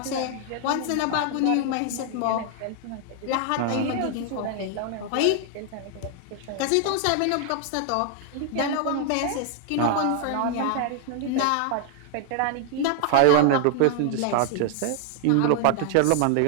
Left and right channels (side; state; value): both; different; correlation 0.00